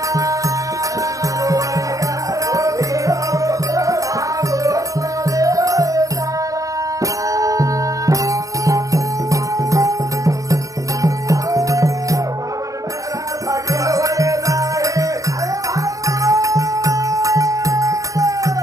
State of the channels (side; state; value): left; late; 0.16 ms